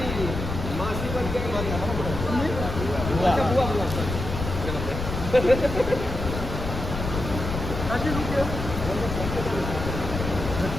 मासी बन के बुआ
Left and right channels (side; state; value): left; noise; rumble, 5 dB below the sound